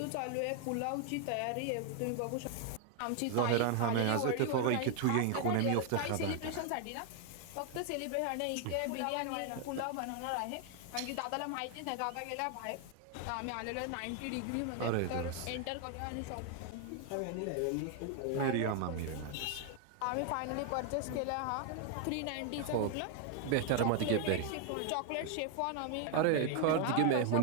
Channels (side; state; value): both; different; correlation 0.00